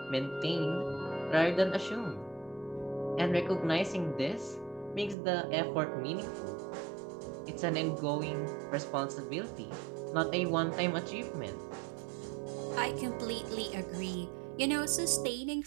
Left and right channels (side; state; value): left; drops out; at 5.2 s